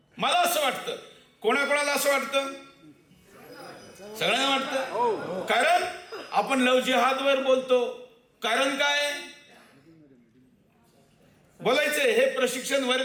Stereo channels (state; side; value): identical; both; correlation 1.00